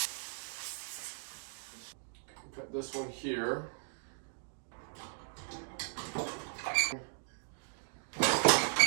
Cut this one here.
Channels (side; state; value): left; silent; digital silence